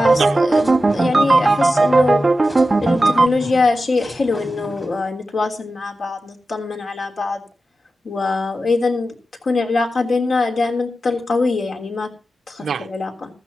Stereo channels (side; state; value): both; normal; correlation 0.92